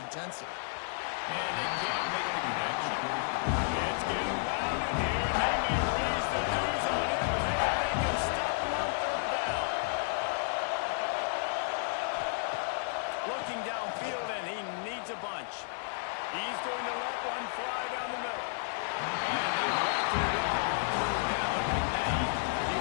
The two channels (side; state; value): right; silent; digital silence